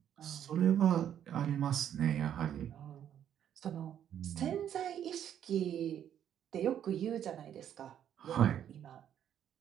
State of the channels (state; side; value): quieter; left; 9.9 dB